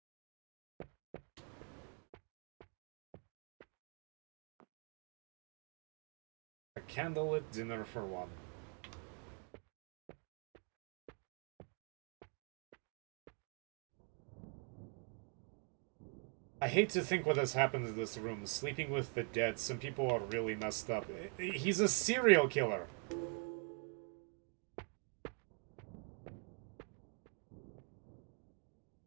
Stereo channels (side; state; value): left; quieter; 39.6 dB